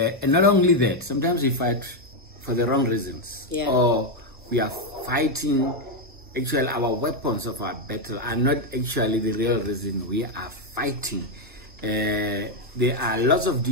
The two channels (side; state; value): both; normal; correlation 0.03